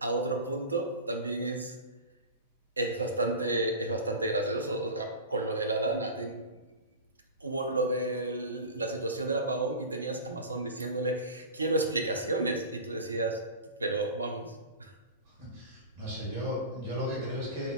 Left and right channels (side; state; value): both; inverted; correlation -0.31